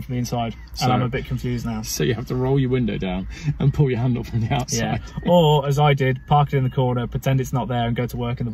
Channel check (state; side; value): identical; both; correlation 1.00